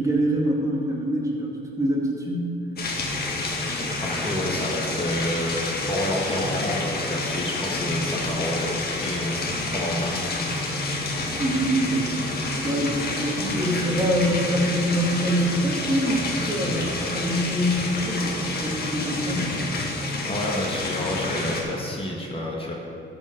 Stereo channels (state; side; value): normal; both; correlation 0.47